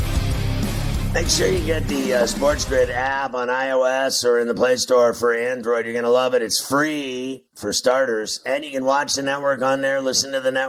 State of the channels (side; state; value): both; identical; correlation 1.00